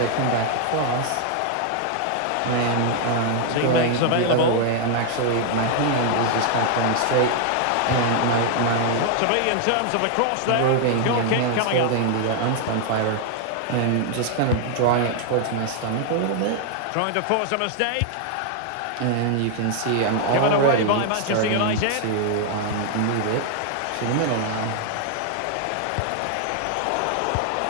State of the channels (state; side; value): different; both; correlation 0.00